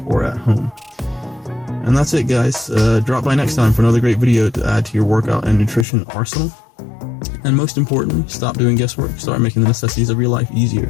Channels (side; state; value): right; drops out; at 5.9 s